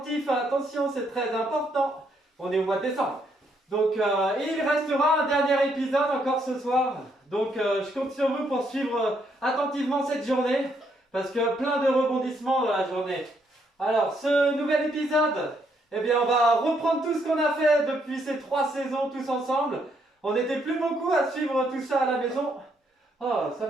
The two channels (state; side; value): normal; both; correlation 0.73